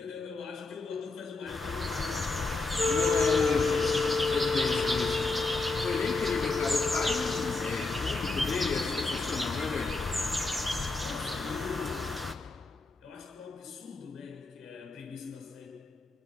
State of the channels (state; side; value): quieter; right; 3.5 dB